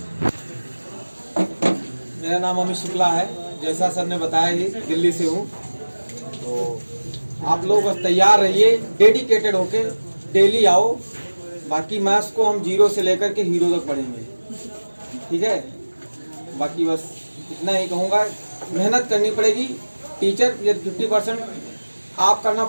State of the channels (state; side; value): inverted; both; correlation -1.00